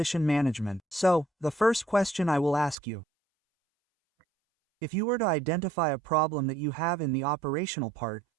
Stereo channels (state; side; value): drops out; left; at 2.8 s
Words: management? So, the first question I will ask you. If you were to identify a problem that you have in the operational part,